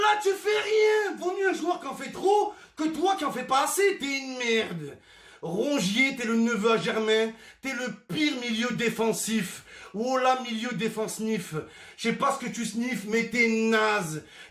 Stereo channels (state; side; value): identical; both; correlation 1.00